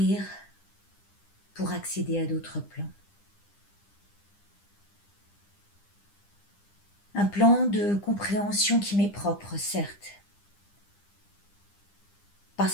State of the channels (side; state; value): right; late; 9.9 ms